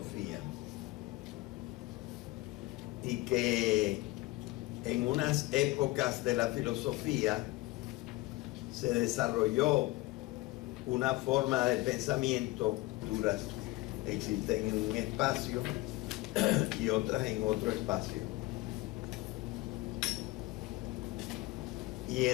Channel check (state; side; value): quieter; right; 20.1 dB